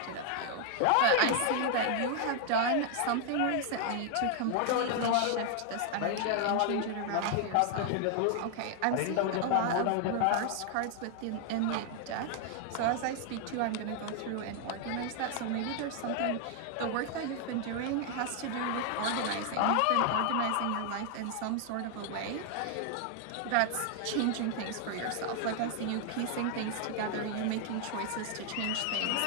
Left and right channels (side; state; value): both; different; correlation 0.00